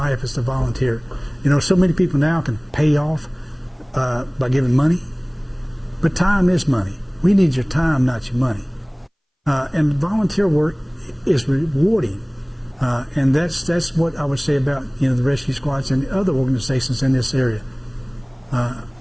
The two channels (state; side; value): identical; both; correlation 1.00